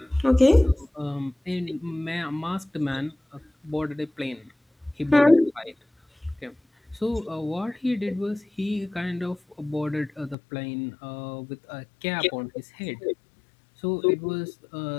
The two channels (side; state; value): right; drops out; at 10.4 s